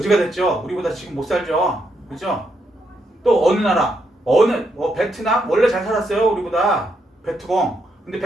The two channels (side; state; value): both; normal; correlation 0.79